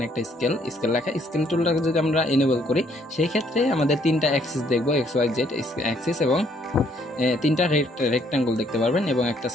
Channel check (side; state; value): both; normal; correlation 0.67